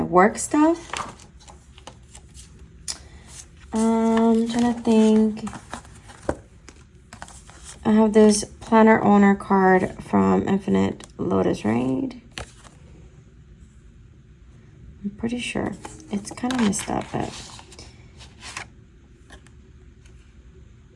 work stuff. I'm trying to think. I have this planner owner card from Infinite Lotus, right? I'm pretty sure. It's kind of messed up, but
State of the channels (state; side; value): identical; both; correlation 1.00